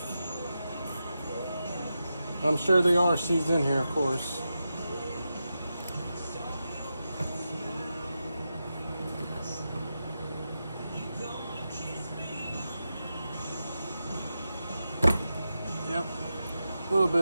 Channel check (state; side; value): inverted; both; correlation -0.89